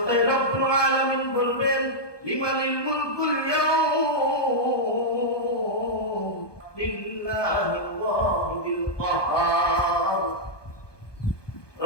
রব্বুল আলামিন বলবেন, লিমানিল মুলকুল ইয়াউম লিল্লাহিল ওয়াহিদিল কাহ্হার।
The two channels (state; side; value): late; right; 1.2 ms